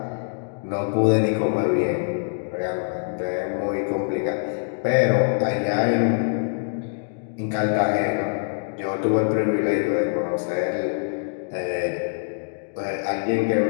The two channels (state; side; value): silent; right; digital silence